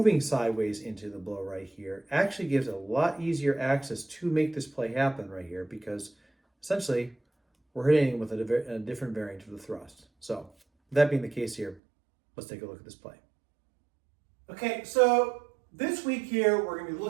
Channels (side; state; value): left; drops out; at 11.8 s